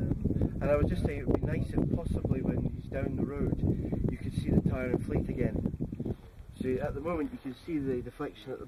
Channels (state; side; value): identical; both; correlation 1.00